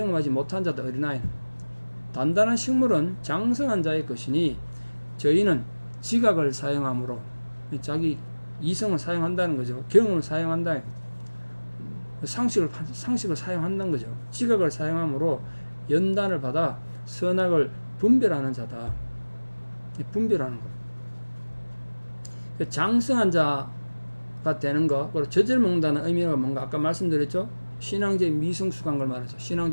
못한 자도 어린아이는. 단단한 식물은 장성한 자의 것이니 저희는 지각을 사용함으로, 자기 이성을 사용한다는 거죠. 경험을 사용한다. 상식을 사용한다는 거죠. 지각을 사용함으로 연단을 받아 선악을 분별하는 자다. 분별하는 거. 장성한 자가 되는 거, 그리고 젖을 먹는다는 의미가 뭔가 아까 말씀드렸죠. 신앙적 미성숙한 걸 말하죠.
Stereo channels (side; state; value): both; inverted; correlation -1.00